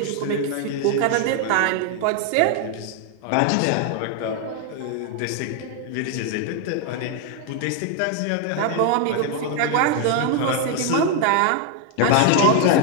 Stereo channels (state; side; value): different; both; correlation 0.00